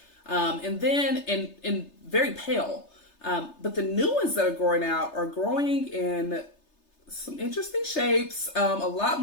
and then and very pale. But the new ones that are growing out are growing in some interesting shapes, a lot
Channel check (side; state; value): right; late; 3.3 ms